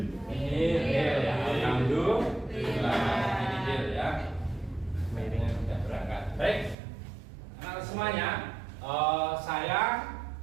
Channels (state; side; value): drops out; left; at 6.8 s